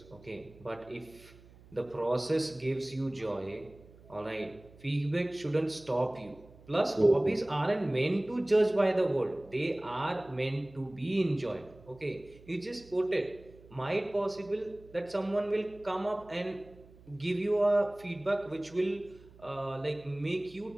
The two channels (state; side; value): noise; right; hum, 23 dB below the sound